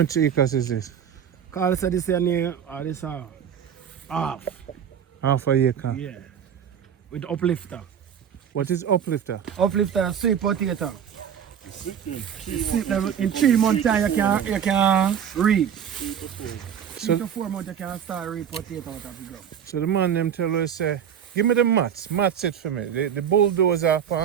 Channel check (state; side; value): quieter; left; 8.4 dB